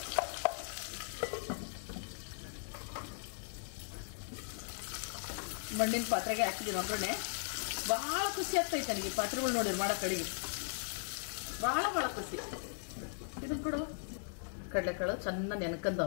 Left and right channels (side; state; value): right; silent; digital silence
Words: ಮಣ್ಣಿನ ಪಾತ್ರೆಗೆ ಹಾಕಿದ್ದೀನಿ ಒಗ್ಗರಣೆ. ಬಹಳ ಖುಷಿ ಆಗ್ತೈತೆ ನನಗೆ ಈ ಪಾತ್ರೆಗಳು ನೋಡಿರಿ ಮಾಡೋ ಕಡೆಗೆ. ಬಹಳ ಖುಷಿ. ಇದನ್ನ ಕೊಡುವ ಕಡಲೆಕಾಳು ಚೆನ್ನಾಗಿ